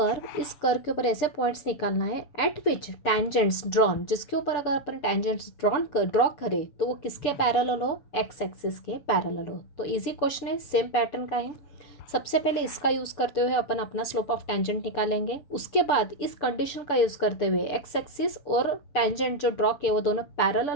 इस कर्व के ऊपर ऐसे पॉइंट्स निकालना है एट विच टेंजेंट्स ड्रॉन, जिसके ऊपर अगर अपन टेंजेंट्स ड्रॉ करें तो वो किसके पैरेलल हो, एक्स एक्सिस के पैरेलल हो। तो इजी क्वेश्चन है, सेम पैटर्न का है। सबसे पहले इसका यूज़ करते हुए अपन अपना स्लोप ऑफ टेंजेंट निकालेंगे, उसके बाद इस कंडीशन का यूज़ करते हुए एक्स एक्सिस और टेंजेंट जो ड्रॉ किए वो दोनों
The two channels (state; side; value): late; right; 7.0 ms